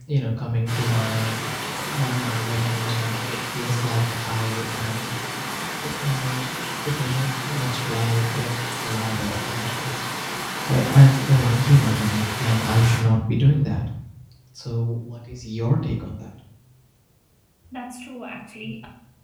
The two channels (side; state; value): both; identical; correlation 1.00